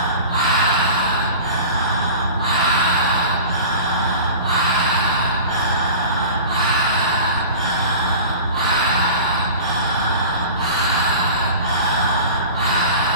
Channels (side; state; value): both; inverted; correlation -0.37